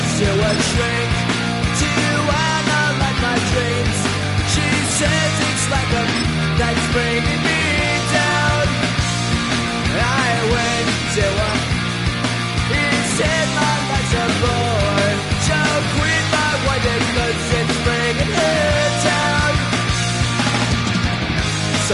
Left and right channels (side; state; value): both; identical; correlation 1.00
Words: to a shrink to analyze my dreams. She says it's like a that's bringing me down. I went to a he said my life's a bore. So quit my white cause it's bringing her down.